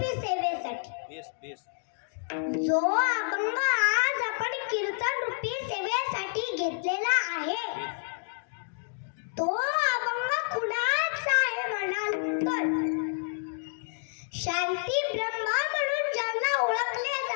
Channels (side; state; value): right; silent; digital silence